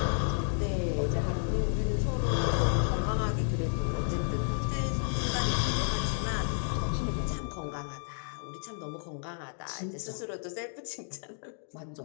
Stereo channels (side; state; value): right; silent; 57 dB below the other